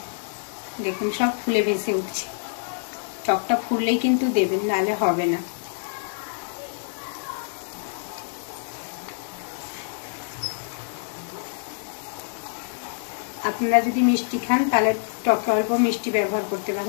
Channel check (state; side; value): silent; right; digital silence